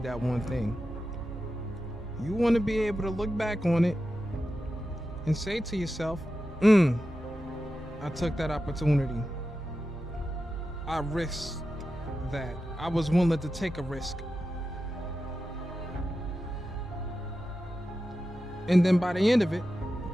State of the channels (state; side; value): normal; both; correlation 0.91